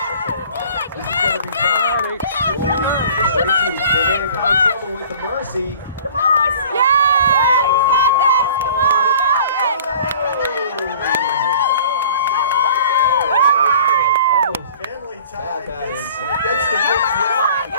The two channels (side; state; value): both; inverted; correlation -0.47